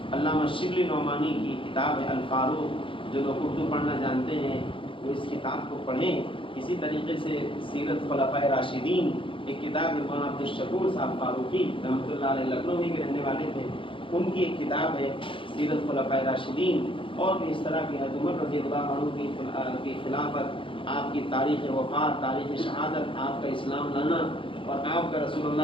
علامہ شبلی نعمانی کی کتاب ہے الفاروق، جو لوگ اردو پڑھنا جانتے ہیں وہ اس کتاب کو پڑھیں۔ اسی طریقے سے سیرت خلفائے راشدین ایک کتاب ہے، مولانا عبدالشکور صاحب فاروقی رحمۃ اللہ علیہ لکھنؤ ہی کے رہنے والے تھے، ان کی ایک کتاب ہے سیرت خلفائے راشدین، اور بھی اس طرح کی حضرت عمر رضی اللہ عنہ کی خلافت، آپ کی تاریخ وفات، تاریخ شہادت، آپ کا اسلام لانا اور آپ کا رسول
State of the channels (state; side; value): late; right; 0.25 ms